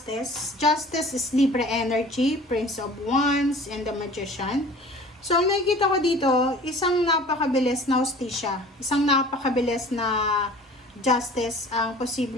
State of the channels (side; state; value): both; normal; correlation 0.45